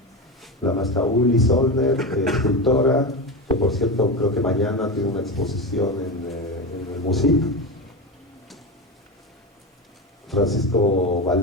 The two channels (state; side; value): normal; both; correlation 0.19